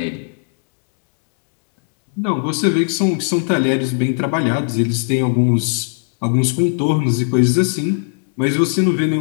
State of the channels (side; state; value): right; silent; digital silence